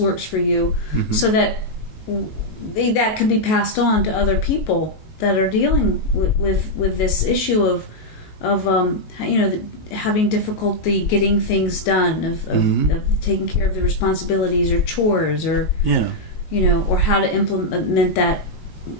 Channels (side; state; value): right; late; 19 ms